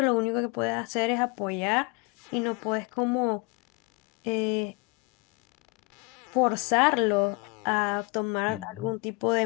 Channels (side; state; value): right; quieter; 29.0 dB